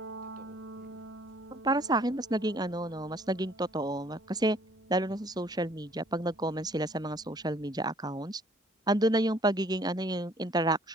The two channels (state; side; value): normal; both; correlation 0.59